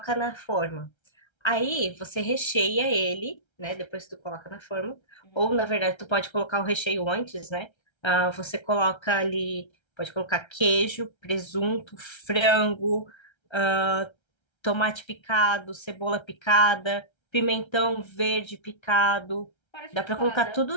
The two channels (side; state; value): right; late; 1.3 ms